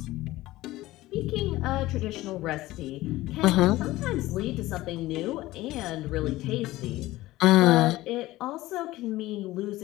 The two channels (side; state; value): right; quieter; 17.4 dB